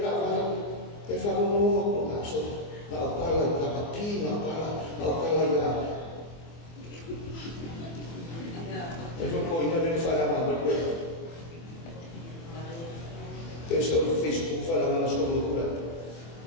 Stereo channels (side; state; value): right; late; 24 ms